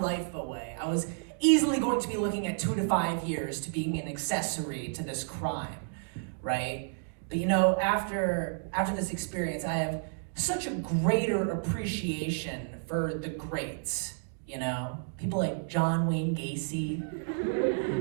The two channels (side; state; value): left; silent; digital silence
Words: away. I was easily going to be looking at 2 to 5 years to being an accessory to this crime, right? But, you know, after this experience, I have such a greater appreciation for the greats, you know? People like John Wayne Gacy,